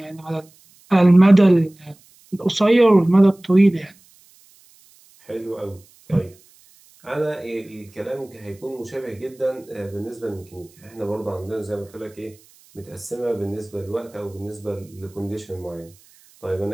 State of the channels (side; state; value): right; noise; hiss, 29 dB below the sound